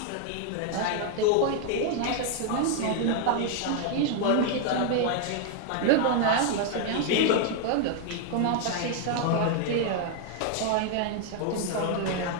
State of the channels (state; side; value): different; both; correlation 0.00